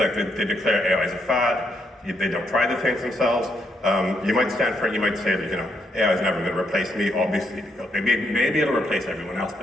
they declare AI as a fad, they don't try the things themselves. You might stand for it, you might say that, AI is never going to replace me, obviously, because maybe it'll replace everyone else,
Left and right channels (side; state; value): both; normal; correlation 0.76